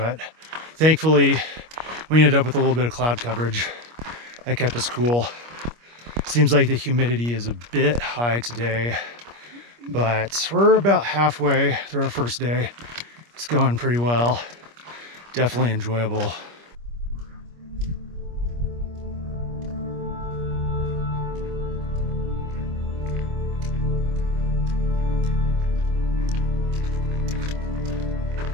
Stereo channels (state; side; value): late; left; 25 ms